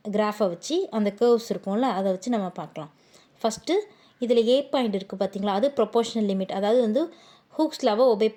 கிராஃபை வச்சு அந்த கர்வ்ஸ் இருக்கும்ல, அதை வச்சு நம்ம பார்க்கலாம். ஃபஸ்ட்டு இதில் ஏ பாயிண்ட் இருக்குது பார்த்திங்களா, அது ப்ரொபோர்ஷனல் லிமிட், அதாவது வந்து ஹூக்ஸ் லாவை ஒபே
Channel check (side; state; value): both; identical; correlation 1.00